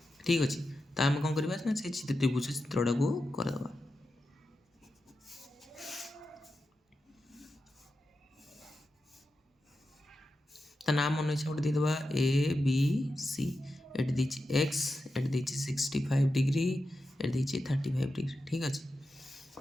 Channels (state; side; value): normal; both; correlation 0.90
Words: ଠିକ୍ ଅଛି। ତ ଆମେ କ'ଣ କରିବା ନା ସେ ତ୍ରିଭୁଜ ଚିତ୍ରଟାକୁ କରିଦେବା। ତା ନାଁ ମନେ ଇଚ୍ଛା ଗୋଟେ ଦେଇଦେବା ଏ ବି ସି। ଏଠି ଦେଇଛି ଏକ୍ସ, ଏଠି ଦେଇଛି 65 ଡିଗ୍ରୀ, ଏଠି ଦେଇଛି 35 ଡିଗ୍ରୀ। ଠିକ୍ ଅଛି।